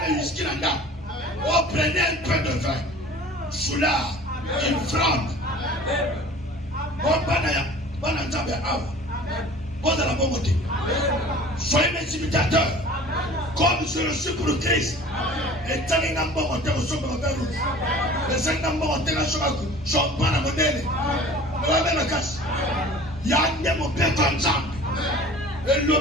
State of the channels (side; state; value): both; normal; correlation 0.44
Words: whisky là-dedans. On prenait un peu de vin. Foulard, une fronde. Bon, banana, bon, dans la bonne côté. Soyez mes imitateurs. Comme je le suis pour le Christ. Et tant qu'il y a un bon côté, on se met vers rouge. Les 5 ans, on se met à la modèle. On va mettre la casse. Il y a un mon père comme ça. Et